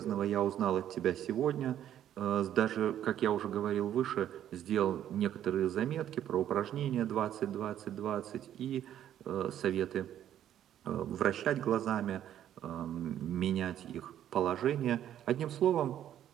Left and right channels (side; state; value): left; quieter; 11.0 dB